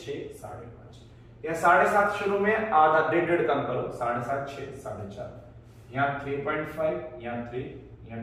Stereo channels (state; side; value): identical; both; correlation 1.00